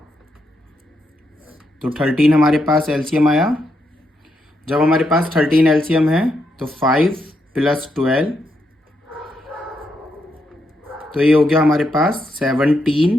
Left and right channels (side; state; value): both; normal; correlation 0.80